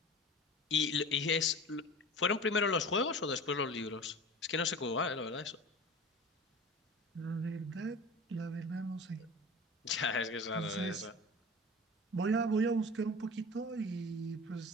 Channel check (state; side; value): normal; both; correlation 0.36